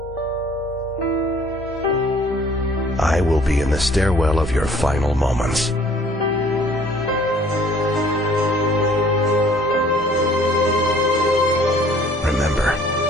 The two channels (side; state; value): both; normal; correlation 0.56